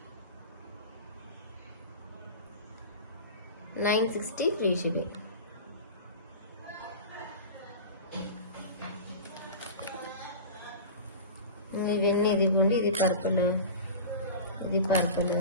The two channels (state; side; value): inverted; both; correlation -0.33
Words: $960 ఫ్రీ షిప్పింగ్. ఇవన్నీ ఇదిగోండి. ఇది పర్పుల్, ఇది పర్పుల్,